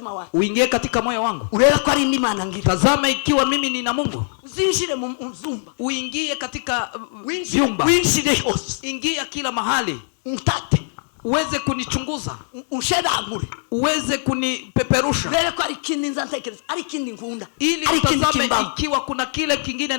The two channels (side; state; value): right; silent; digital silence